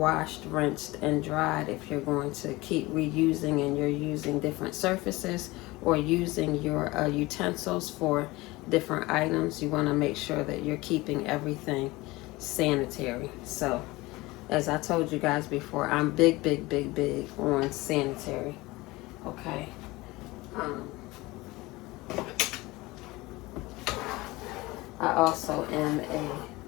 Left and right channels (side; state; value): right; quieter; 21.0 dB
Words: rinsed, and dried if you're going to keep reusing and you're using different surfaces or using your utensils for different items. You want to make sure that you're keeping everything sanitary. So as I told you guys before, I'm big on sanitary. Okay. I also am a